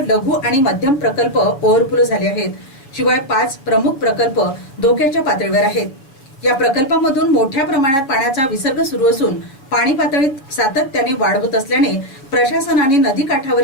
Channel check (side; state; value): right; late; 7.2 ms